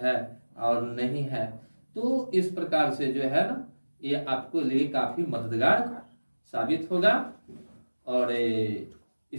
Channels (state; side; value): inverted; both; correlation -1.00